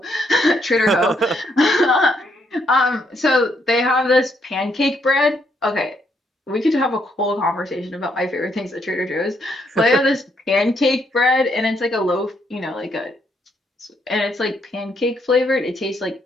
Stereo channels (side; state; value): both; normal; correlation 0.74